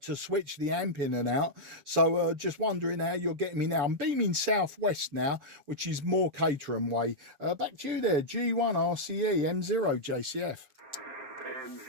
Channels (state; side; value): late; left; 6.9 ms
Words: switch the amp in and out. So just wondering how you're getting me now. I'm beaming southwest now, which is more Caterham way. Back to you there, G1 RCE M0 JCF.